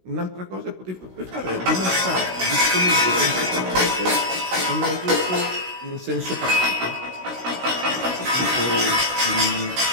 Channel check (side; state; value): left; late; 16 ms